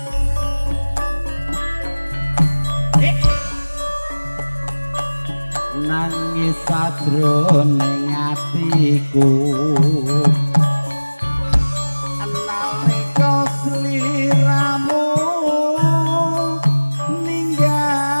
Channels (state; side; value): inverted; both; correlation -1.00